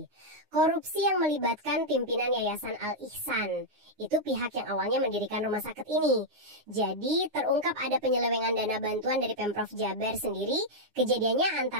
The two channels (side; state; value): left; late; 9.7 ms